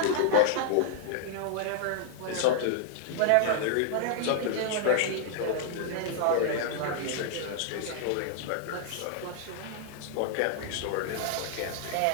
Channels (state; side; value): different; both; correlation -0.01